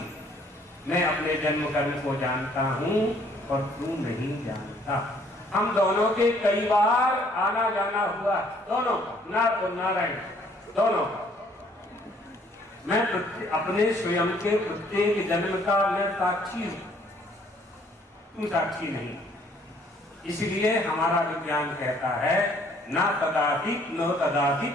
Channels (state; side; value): normal; both; correlation 0.62